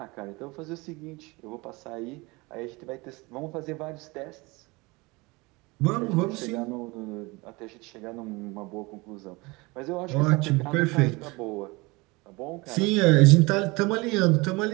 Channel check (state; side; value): quieter; left; 24.5 dB